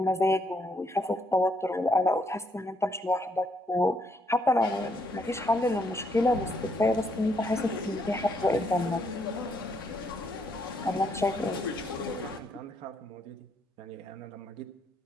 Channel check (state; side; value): normal; both; correlation 0.73